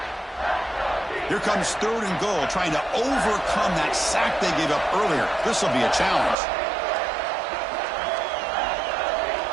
Here comes third and goal, trying to overcome that sack they gave up earlier. This will be a challenge.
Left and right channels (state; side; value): drops out; left; at 6.4 s